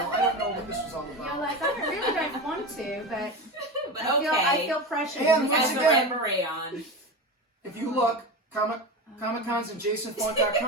don't know what this was all You're about. like, I really don't want to, but But I feel pressure. And Has once the again- red beret on. If you look, Comic-Cons and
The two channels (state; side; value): normal; both; correlation 0.23